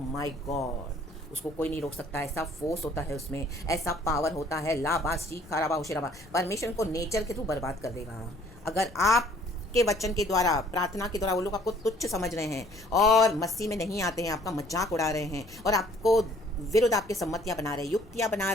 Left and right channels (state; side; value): noise; left; rumble, 23 dB below the sound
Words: गॉड, उसको कोई नहीं रोक सकता। ऐसा फोर्स होता है उसमें, ऐसा पावर होता है, लाबा शिखाराबा हुशिराबा। परमेश्वर को नेचर के थ्रू बर्बाद कर देगा। अगर आप के वचन के द्वारा, प्रार्थना के द्वारा वो लोग आपको तुच्छ समझ रहे हैं और मसीह में नहीं आते हैं, आपका मजाक उड़ा रहे हैं और आपको विरुद्ध आपके सम्मतियाँ बना रहे हैं, युक्तियाँ बना